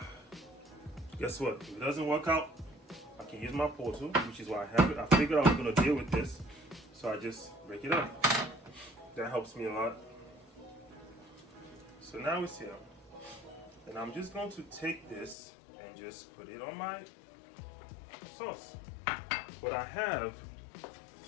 guess what? If it doesn't work out, I can use my portal, which is why I have it. I figured I was gonna deal with this, so I just break it up. That helps me a lot. So now it's here. And I'm just going to take this and just put it on my sauce. But I have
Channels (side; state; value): right; drops out; at 15.4 s